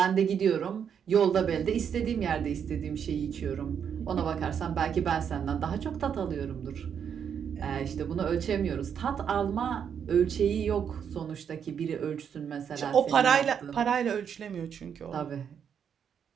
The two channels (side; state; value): left; quieter; 7.8 dB